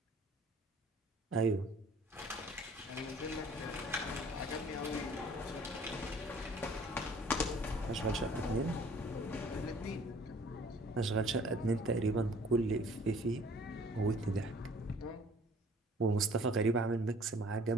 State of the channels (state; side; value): normal; both; correlation 0.54